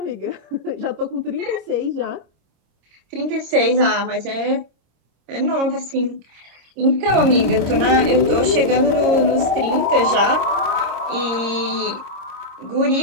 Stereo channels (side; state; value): left; late; 26 ms